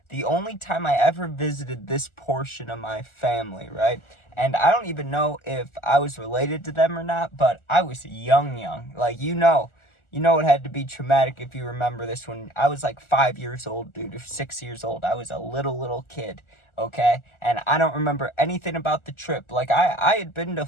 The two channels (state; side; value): late; right; 1.4 ms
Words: The only time I ever visited this portion of my family, right? And I don't even know if I was related to them or not, but I was young. Like, it had to be traumatic if you remember this when I was like 5 years old, dude, or 6 years old. I was a little kid, okay? And I don't remember anything about the trip. Like, I had been to